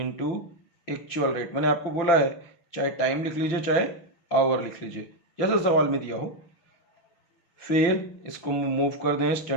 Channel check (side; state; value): right; late; 5.9 ms